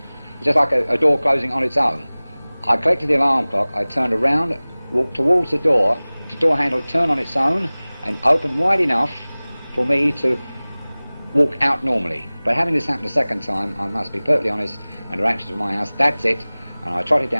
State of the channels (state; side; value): inverted; both; correlation -0.99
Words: it's just like a door closing on its own. I collected the alarm clock, I turned around, walked towards the door handle turned on its own and opened wide enough for me to walk out normally. But having this happen a second time, I must be perfectly honest, under actions of my house, that's it, and I trotted